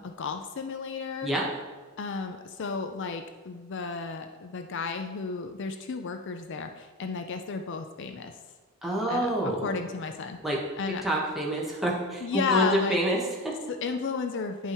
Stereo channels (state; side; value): normal; both; correlation 0.27